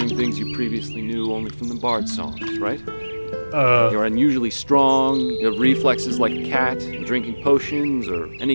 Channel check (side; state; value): both; inverted; correlation -1.00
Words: things you previously knew only from the Bard songs, right? You're unusually strong, you have reflexes like a cat, and drinking potions or